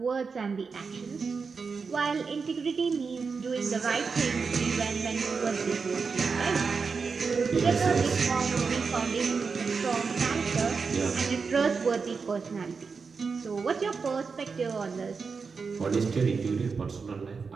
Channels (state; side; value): quieter; left; 5.1 dB